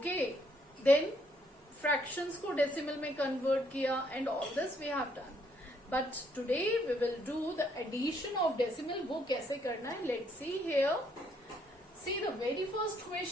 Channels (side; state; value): both; normal; correlation 0.70